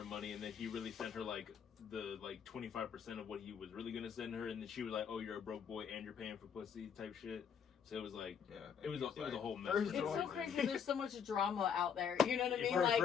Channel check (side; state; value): right; quieter; 7.4 dB